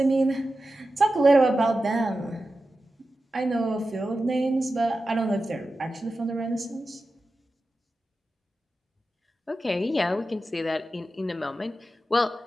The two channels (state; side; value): normal; both; correlation 0.93